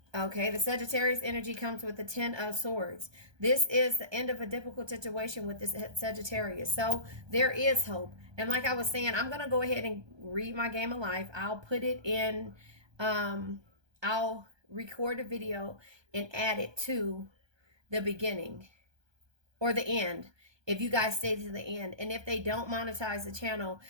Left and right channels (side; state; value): left; late; 1.2 ms